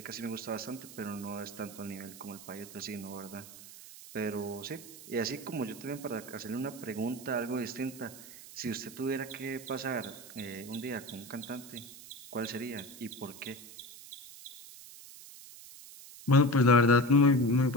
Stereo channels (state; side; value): noise; right; hiss, 16 dB below the sound